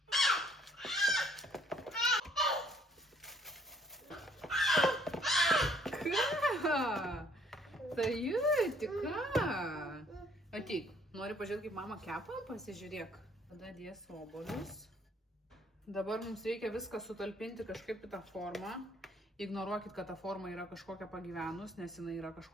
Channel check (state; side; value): normal; both; correlation 0.61